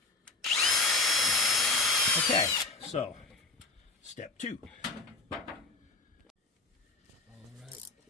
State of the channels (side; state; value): right; quieter; 3.7 dB